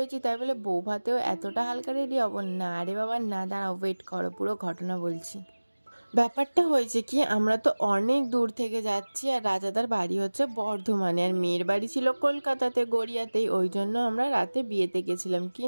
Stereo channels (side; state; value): both; inverted; correlation -1.00